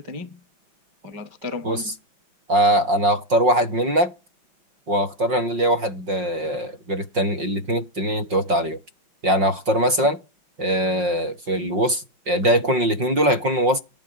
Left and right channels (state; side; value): late; left; 5.6 ms